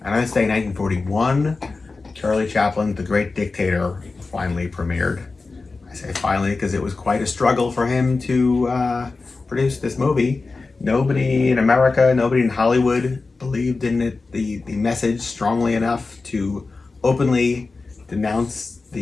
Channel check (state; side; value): quieter; right; 3.9 dB